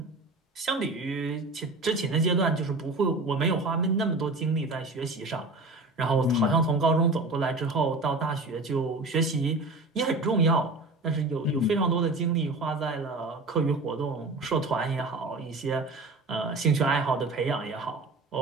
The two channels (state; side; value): quieter; left; 3.1 dB